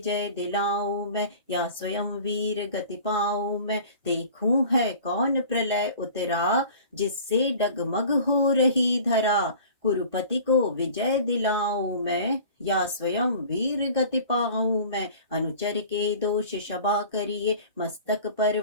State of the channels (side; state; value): both; inverted; correlation -0.43